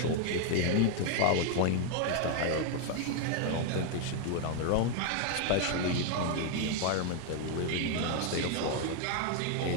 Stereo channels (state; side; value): different; both; correlation 0.00